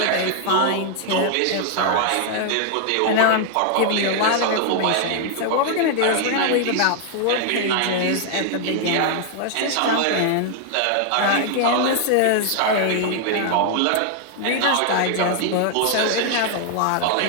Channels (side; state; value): both; different; correlation 0.00